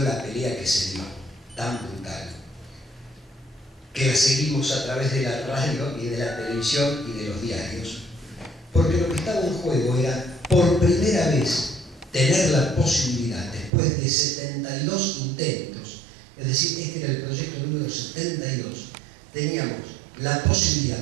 pelea que se dio, tan brutal, que la seguimos a través de la radio y de la televisión y de los diarios, porque lo que estaba en juego era, por primera vez, tener la posibilidad, después de 72 intentos, es decir, este era el proyecto número 72, teníamos la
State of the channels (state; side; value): drops out; left; at 13.7 s